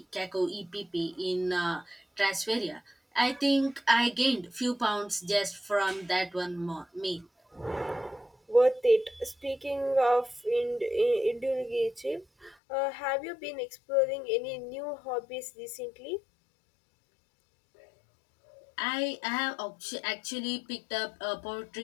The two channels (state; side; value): drops out; right; at 12.6 s